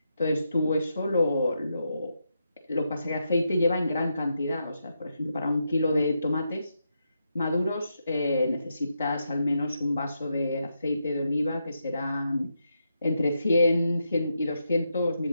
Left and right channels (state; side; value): inverted; both; correlation -0.83